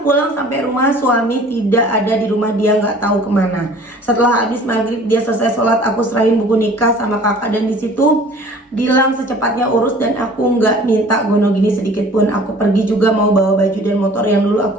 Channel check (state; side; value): normal; both; correlation 0.49